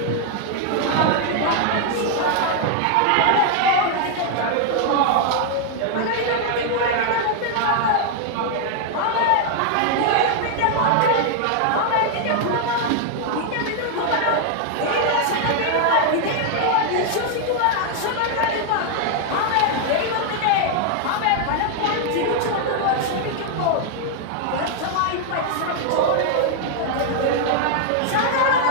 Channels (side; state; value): both; different; correlation 0.00